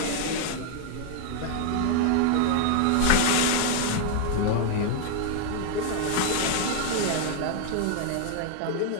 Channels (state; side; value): different; both; correlation 0.00